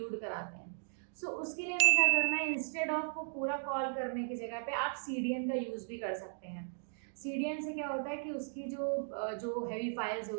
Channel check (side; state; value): left; silent; digital silence